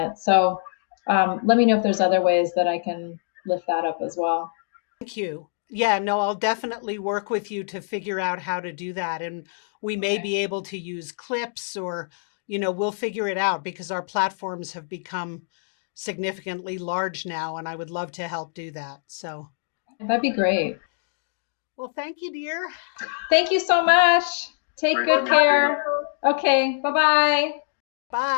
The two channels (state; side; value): silent; right; digital silence